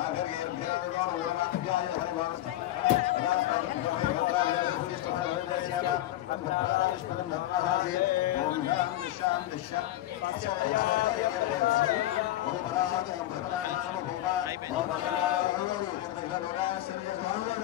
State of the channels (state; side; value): quieter; right; 14.4 dB